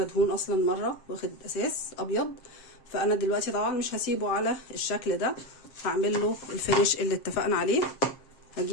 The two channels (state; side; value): late; right; 7.5 ms